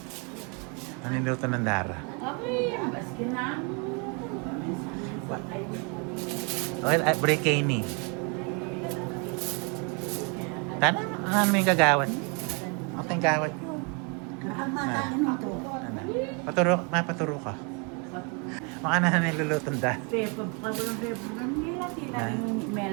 Ano yung luto ng Dara? Okay, baskin na. Okay, brekini. Tana, ano may gagawat? Ako yung gawat nyo. Ang matalin nito. Mapaturo ka. Maka na nilulutong da.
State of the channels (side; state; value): left; quieter; 34.2 dB